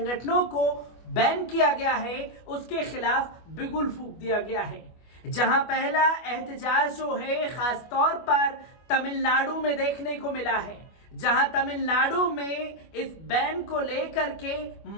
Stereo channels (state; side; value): late; right; 25 ms